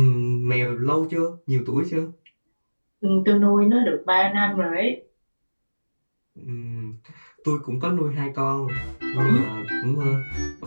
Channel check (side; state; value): both; inverted; correlation -1.00